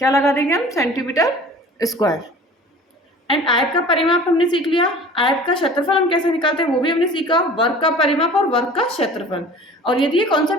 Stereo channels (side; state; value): both; normal; correlation 0.44